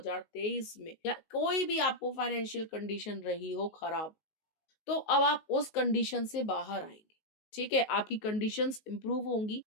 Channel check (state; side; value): late; right; 19 ms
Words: में, या कोई भी आपको फाइनेंशियल कंडीशन रही हो खराब, तो अब आप उस कंडीशन से बाहर आएंगे। ठीक है, आपकी कंडीशंस इंप्रूव होंगी,